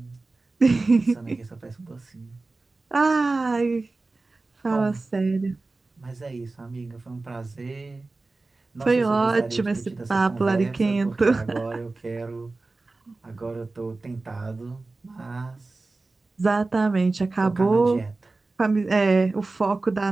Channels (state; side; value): quieter; left; 3.4 dB